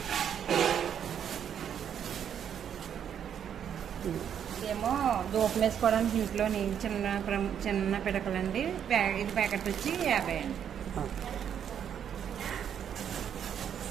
ఇదేమో దూపం వేసుకోవడానికి ఇంట్లో చిన్న పిడకలండి. ఇది ప్యాకెట్ వచ్చి 50 అండి.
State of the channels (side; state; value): left; quieter; 8.8 dB